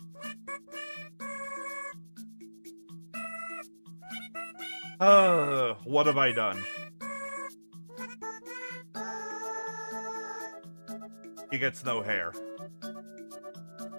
What have I done? He gets no hair.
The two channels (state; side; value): inverted; both; correlation -1.00